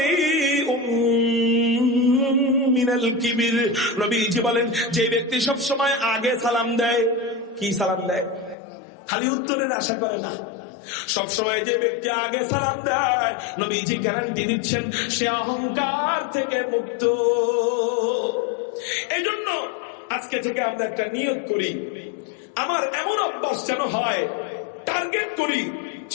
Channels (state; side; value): drops out; right; at 8.6 s